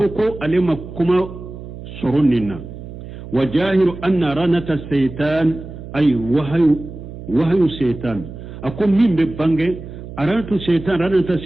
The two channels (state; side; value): noise; right; hum, 12 dB below the sound